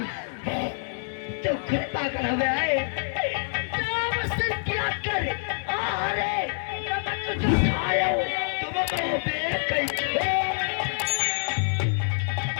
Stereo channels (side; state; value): right; silent; 61 dB below the other